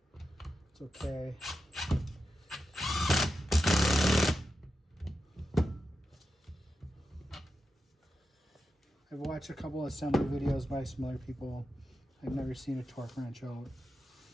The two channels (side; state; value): both; normal; correlation 0.89